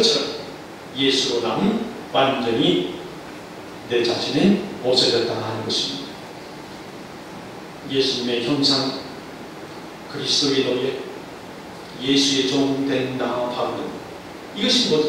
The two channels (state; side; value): identical; both; correlation 1.00